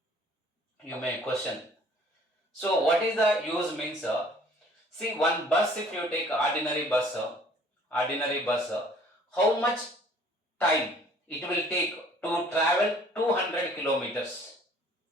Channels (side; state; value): both; normal; correlation 0.55